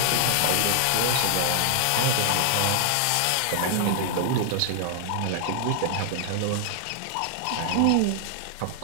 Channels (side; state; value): both; different; correlation 0.00